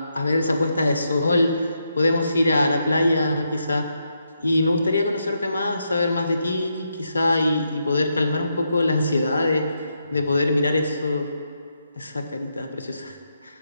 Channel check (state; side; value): inverted; both; correlation -0.81